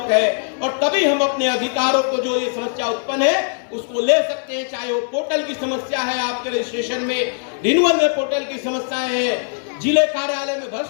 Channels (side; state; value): right; silent; digital silence